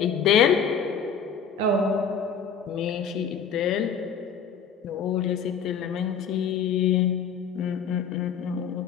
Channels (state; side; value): quieter; right; 6.6 dB